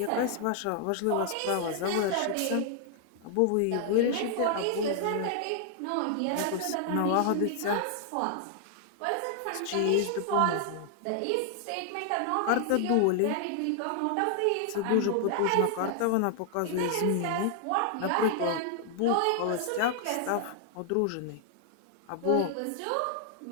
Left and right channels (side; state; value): both; different; correlation 0.00